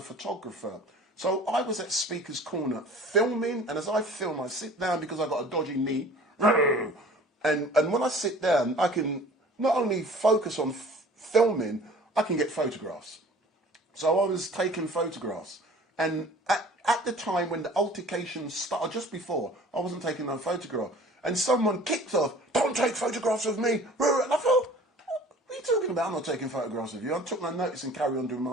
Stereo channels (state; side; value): normal; both; correlation 0.47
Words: photographer. So I was at Speaker's Corner filming, and as I film, I sit down because I've got a dodgy knee. And when I sit down, I can not only focus on filming, I can get photographs. So I was taking photographs. And at the time when the altercation started, just before, I wasn't taking no photograph. And someone kicked off, "Don't take photographs of me." And I thought, talking about? I'm not taking photographs of you. I took no notice and carried on doing